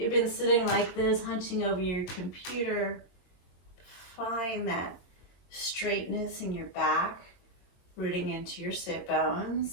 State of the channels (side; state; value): right; late; 22 ms